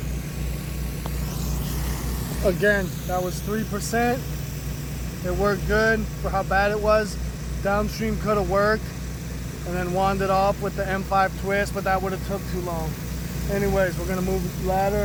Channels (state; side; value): identical; both; correlation 1.00